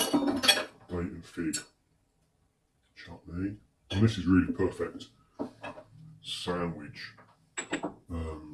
date and fig chutney. And this is really perfect sandwich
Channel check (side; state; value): both; identical; correlation 1.00